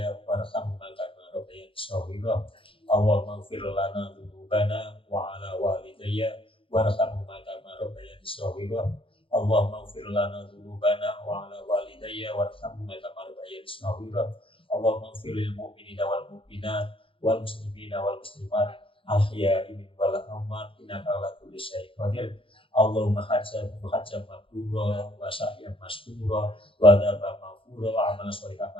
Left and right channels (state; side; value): late; right; 0.26 ms